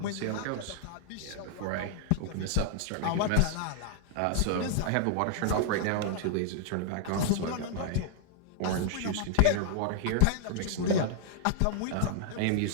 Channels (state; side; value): different; both; correlation -0.01